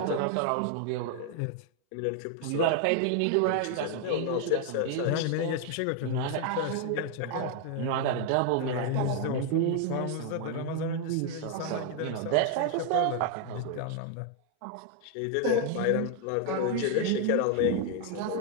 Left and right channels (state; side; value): different; both; correlation 0.00